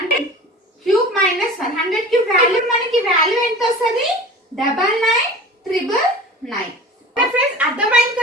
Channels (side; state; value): both; normal; correlation 0.38